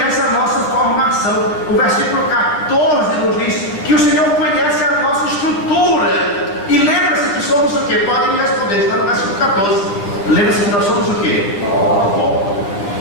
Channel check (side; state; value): right; late; 10 ms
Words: a nossa formação. O versículo 14 nos diz que o Senhor conhece a nossa estrutura. E lembra-se que somos o quê? Podem me responder, está no versículo 14. Lembra-se que nós somos o quê? Pó.